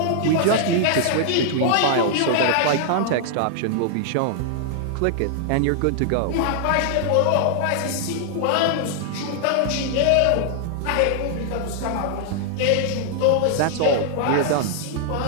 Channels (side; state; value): both; different; correlation -0.01